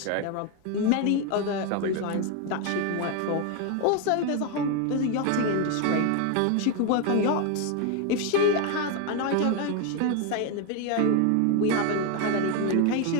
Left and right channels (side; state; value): both; different; correlation 0.02